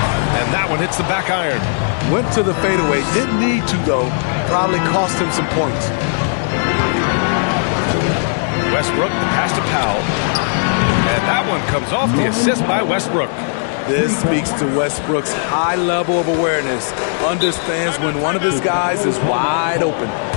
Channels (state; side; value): silent; right; 68 dB below the other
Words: And that one hits the back iron. Went to the fadeaway. Didn't need to, though. Probably cost him some points. Westbrook, the pass to Powell. And that one comes off the assist by Westbrook. This speaks to Westbrook's high level of awareness. Understands when one of his guys is wide open.